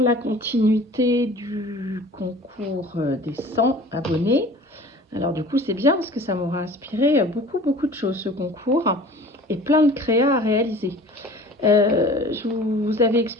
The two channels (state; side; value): normal; both; correlation 0.44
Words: continuité du concours des 100 abonnés. Alors du coup, c'est bien parce que ça m'aura inspiré beaucoup de choses ce concours et plein de créas à réaliser. Je vous avais